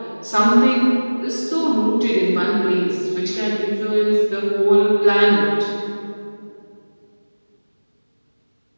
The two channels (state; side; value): inverted; both; correlation -1.00